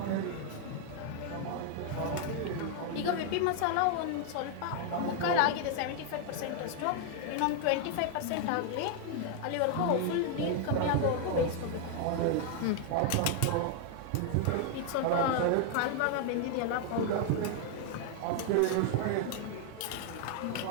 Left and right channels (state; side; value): different; both; correlation 0.00